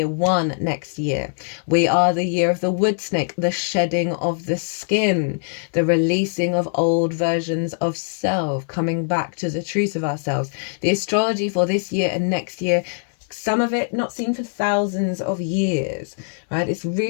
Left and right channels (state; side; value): silent; right; 64 dB below the other